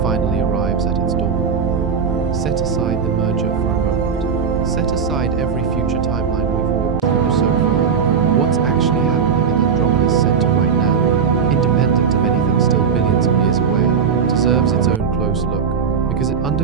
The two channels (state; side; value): quieter; left; 6.4 dB